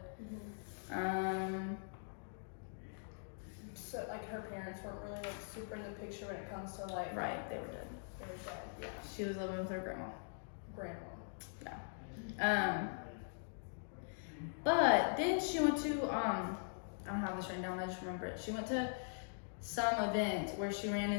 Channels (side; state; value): right; silent; digital silence